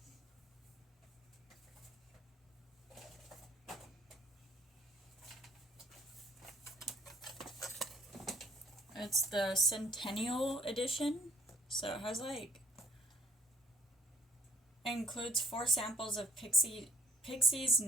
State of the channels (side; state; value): both; normal; correlation 0.61